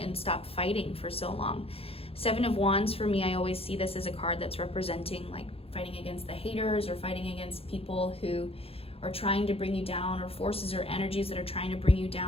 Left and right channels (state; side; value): late; right; 0.28 ms